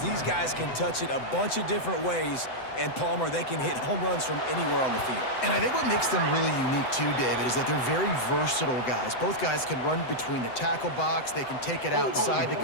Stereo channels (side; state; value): right; late; 7.9 ms